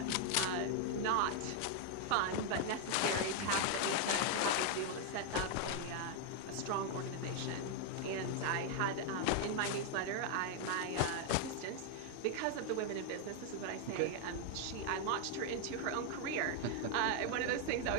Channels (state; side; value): different; both; correlation 0.00